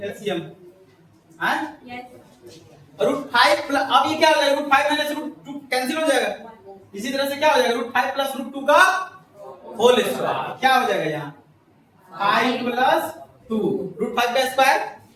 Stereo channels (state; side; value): identical; both; correlation 1.00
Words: एलसीएम हाँ यस √5 प्लस अब ये क्या हो जाएगा √5 माइनस √2 कैंसिल हो जाएगा इसी तरह से क्या हो जाएगा √5 प्लस √2 का होल स्क्वायर क्या हो जाएगा यहाँ 5 प्लस 2 √5 का स्क्वायर